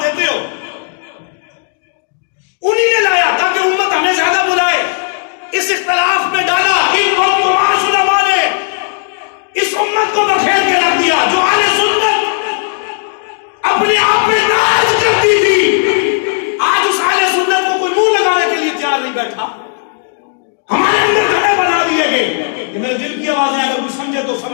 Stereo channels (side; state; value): right; silent; digital silence